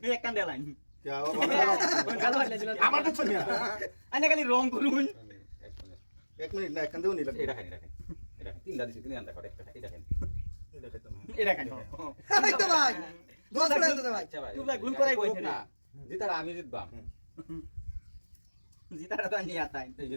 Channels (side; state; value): both; inverted; correlation -1.00